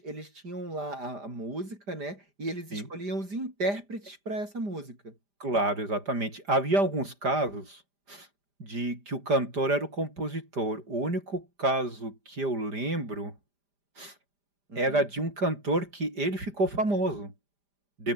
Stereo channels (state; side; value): late; left; 5.0 ms